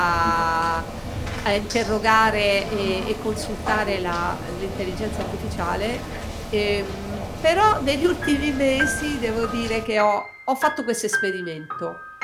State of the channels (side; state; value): both; identical; correlation 1.00